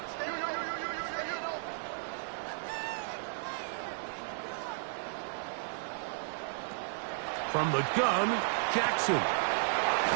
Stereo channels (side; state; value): left; silent; digital silence